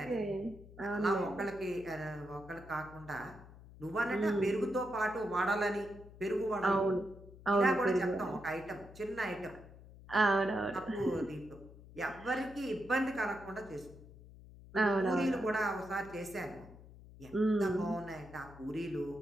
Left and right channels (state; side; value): noise; left; hum, 19 dB below the sound